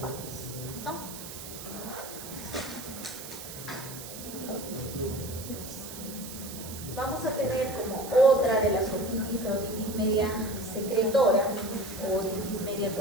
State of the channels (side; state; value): right; noise; hiss, 11 dB below the sound